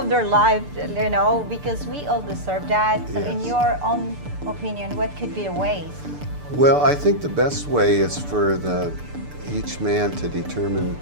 their life, because we all deserve that. So in Yes. your own opinion, what could be the ways? Well, I think the best way is for each man to determine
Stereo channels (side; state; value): left; late; 6.8 ms